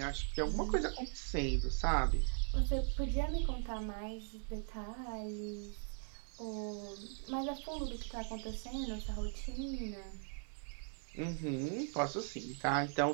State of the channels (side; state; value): left; silent; 51 dB below the other